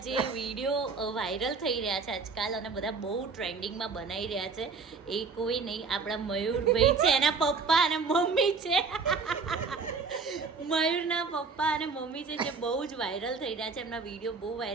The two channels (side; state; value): left; quieter; 4.7 dB